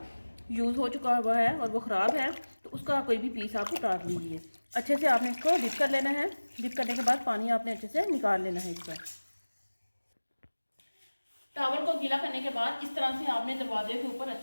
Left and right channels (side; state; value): both; inverted; correlation -1.00